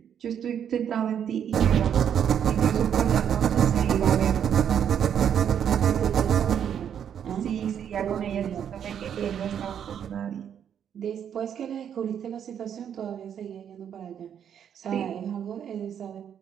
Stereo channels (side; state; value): left; quieter; 8.7 dB